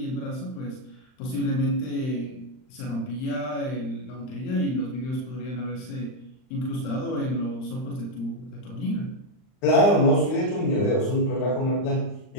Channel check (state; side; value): late; right; 39 ms